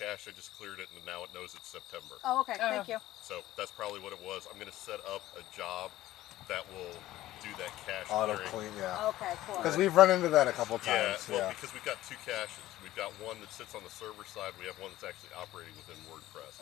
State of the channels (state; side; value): quieter; right; 15.2 dB